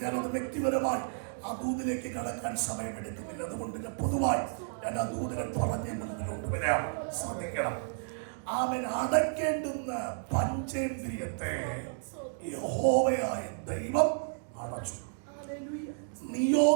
ഞാനത് വ്യക്തിപരമായി ആ ദൂതിലേക്ക് കടക്കാൻ സമയമെടുക്കുന്നില്ല. അതുകൊണ്ട് ഞാൻ പൊതുവായി ഞാൻ ആ ദൂതിനെ പറഞ്ഞ് മുൻപിലോട്ട് വരാം. ശ്രദ്ധിക്കണം. അവൻ അടയ്ക്കേണ്ടുന്ന പഞ്ചേന്ദ്രിയത്തെ യഹോവയായ ദൈവം അടച്ചു.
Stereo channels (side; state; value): left; silent; digital silence